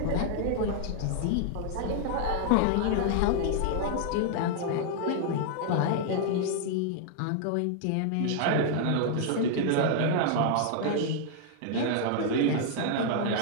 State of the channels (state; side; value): different; both; correlation -0.01